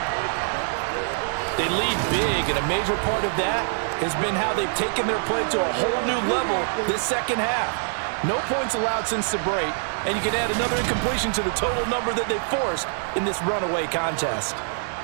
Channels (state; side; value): silent; left; digital silence